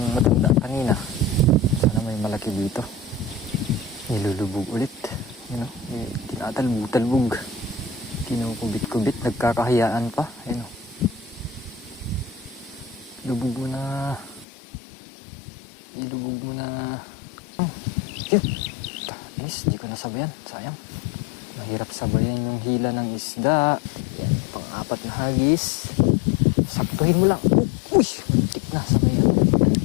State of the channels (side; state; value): right; drops out; at 14.5 s